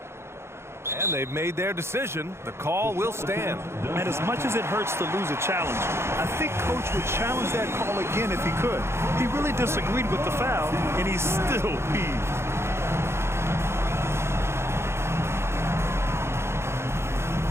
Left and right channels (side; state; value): left; late; 0.12 ms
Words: And they've made their decision. The call will stand. And as much as it hurts to lose a challenge, I think Coach would challenge that call again if he could. He really disagreed with the foul, and he's still peeved.